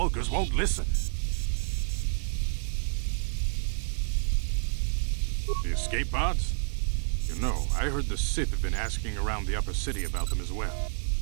won't listen. The escape pods? You know, I heard the Sith have been asking around the upper city about them as well.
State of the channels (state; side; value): silent; left; digital silence